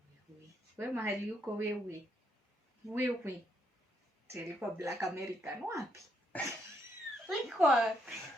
Wewe mahali uko wewe. Tulikuwa Black American wapi? Tulikuwa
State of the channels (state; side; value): normal; both; correlation 0.75